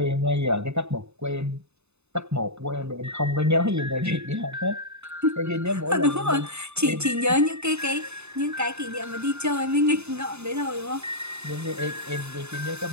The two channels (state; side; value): late; left; 0.81 ms